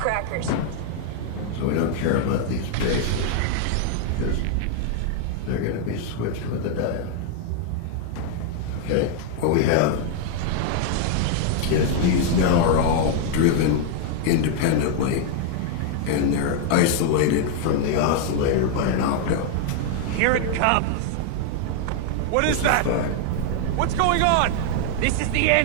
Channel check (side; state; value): both; different; correlation 0.00